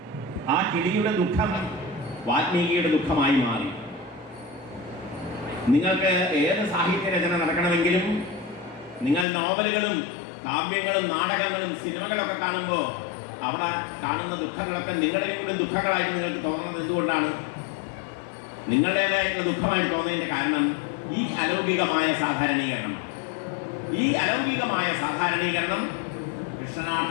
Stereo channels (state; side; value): drops out; right; at 9.2 s